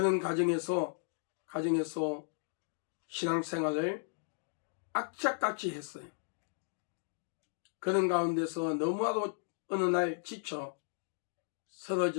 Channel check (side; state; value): right; silent; digital silence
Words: 과정에서 신앙생활을 악착같이 했어요. 그런 가운데서 너무나도 어느 날 지쳐